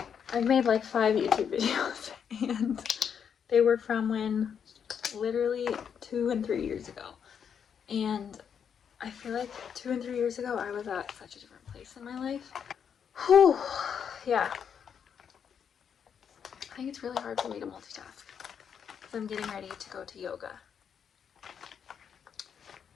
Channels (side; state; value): right; quieter; 7.6 dB